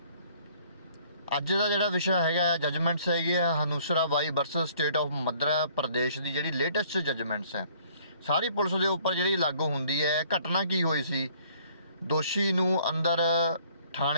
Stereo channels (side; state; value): both; inverted; correlation -0.59